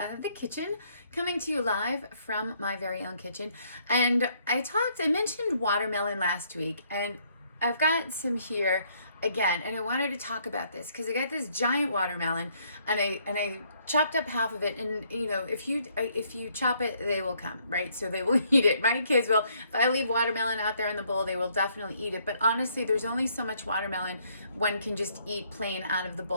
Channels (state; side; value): inverted; both; correlation -0.68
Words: The Kitchen, coming to you live from my very own kitchen. And I mentioned watermelon last week, and I've got some here again, and I wanted to talk about this because I got this giant watermelon, and I chopped up half of it, and if you chop it, they will come, right? So they will eat it. My kids will. If I leave watermelon out there in the bowl, they will definitely eat it. But honestly, there's only so much watermelon one can just eat plain out of the